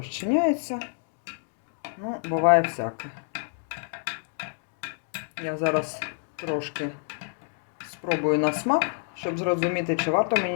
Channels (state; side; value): silent; right; 55 dB below the other